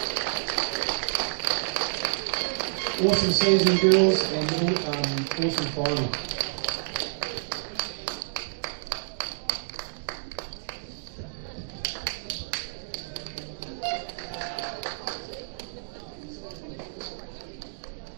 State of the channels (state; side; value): silent; left; digital silence